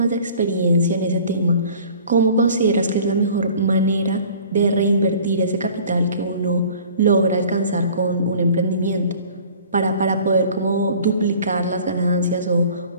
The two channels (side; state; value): both; inverted; correlation -0.49